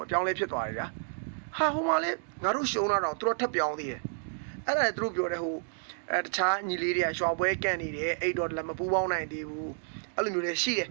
ုတ်ပြောင်းလဲဖြစ်သွားတယ်ဗျာဟာဟိုမှာလေငါတို့ရှုံးလာတော့သူတို့ထပ်ပြောင်းသေးတယ်အဲ့ဒါလည်းသူတို့ပြောတယ်ဟိုတခြားညီလေးတွေကရွှေပွဲကန်နေတယ်အဲ့တော့လည်းမပူးပေါင်းနိုင်သေးဘူးအဲ့လိုမျိုးလည်းရှိတယ်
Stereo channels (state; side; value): silent; left; digital silence